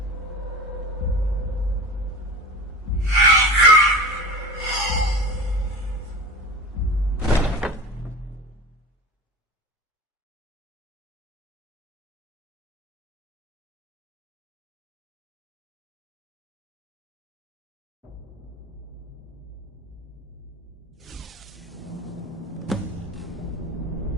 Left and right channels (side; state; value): both; normal; correlation 0.31